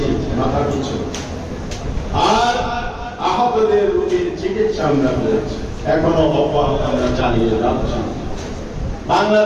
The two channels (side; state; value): both; identical; correlation 1.00